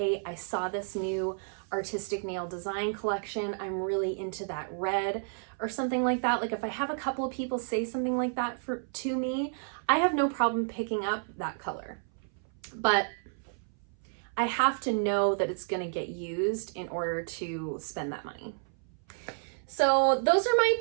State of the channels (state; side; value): silent; left; 57 dB below the other